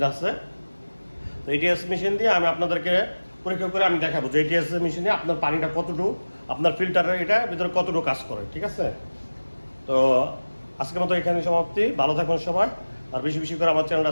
আছে, তো ATS মেশিন দিয়ে আমি আপনাদেরকে পরীক্ষা করে আমি দেখাবো যে ATS মেশিনে আপনার পানিটা কতটুকু, আপনার ফিল্টারের এটা ভিতরে কতটুকু কাজ করে। ঠিক আছে, তো আজকের মতো এখানে সমাপ্তি। ভালো থাকবেন সবাই, আর বেশি বেশি করে আমার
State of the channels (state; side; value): inverted; both; correlation -1.00